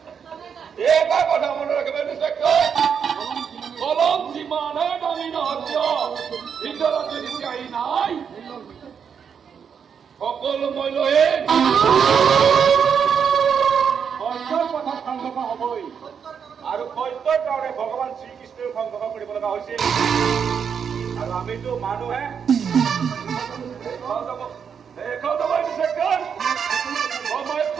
এটা কথা মনত ৰাখিব ইন্সপেক্টৰ কলম যিমানে দামী নহওক কিয় ভিতৰত যদি চিঞাহী নাই সকলো মই লৈ সত্যৰ পথত সংঘৰ্ষ হ'বই আৰু সত্যৰ কাৰণে ভগৱান শ্ৰীকৃষ্ণই সংঘৰ্ষ কৰিব লগা হৈছিল আৰু আমিতো মানুহে সময়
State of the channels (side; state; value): left; quieter; 7.1 dB